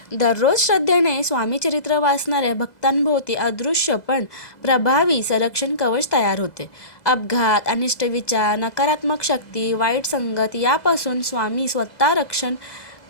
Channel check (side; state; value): right; late; 2.0 ms